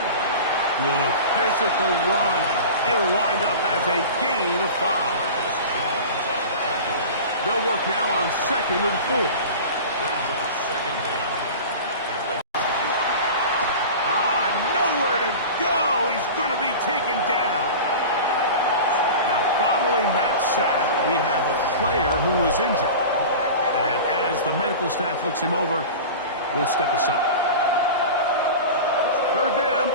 Good physical run. It'll wind up as a gain of 5. They'll work now on 2nd and 4. Nowhere to go. He's going to be taken down. Now, following that sack, we have a player who was injured. And as the medical staff looks him over, we'll step aside. 3rd down,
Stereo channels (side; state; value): both; inverted; correlation -0.33